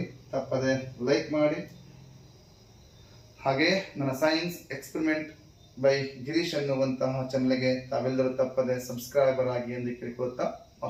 ತಪ್ಪದೆ ಲೈಕ್ ಮಾಡಿ, ಹಾಗೆ ನನ್ನ ಸೈನ್ಸ್ ಎಕ್ಸ್ಪೆರಿಮೆಂಟ್ ಬೈ ಗಿರೀಶ್ ಅನ್ನುವಂತಹ ಚಾನಲ್ಗೆ ತಾವೆಲ್ಲರೂ ತಪ್ಪದೆ ಸಬ್ಸ್ಕ್ರೈಬರ್ ಆಗಿ ಎಂದು ಕೇಳಿಕೊಳ್ಳುತ್ತಾ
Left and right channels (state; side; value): identical; both; correlation 1.00